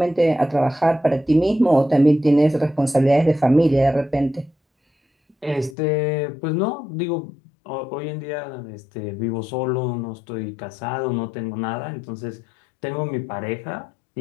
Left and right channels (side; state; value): right; drops out; at 5.8 s